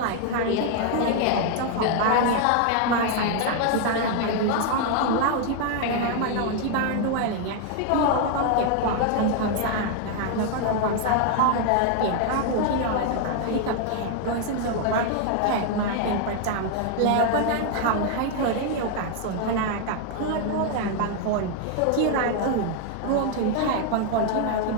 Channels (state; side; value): different; both; correlation 0.00